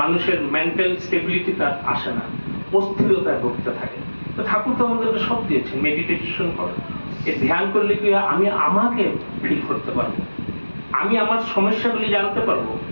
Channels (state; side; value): inverted; both; correlation -1.00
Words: মানুষের মেন্টাল স্টেবিলিটি তার আসে না, অস্থিরতায় ভুগতে থাকে। তো ঠাকুর তো আমাদেরকে সব দিয়েছেন, মেডিটেশন করো। এই ধ্যান করলে কি আমি আমাকে ফিল করতে পারবো, আমি আমার সমস্যাগুলি জানতে পারবো।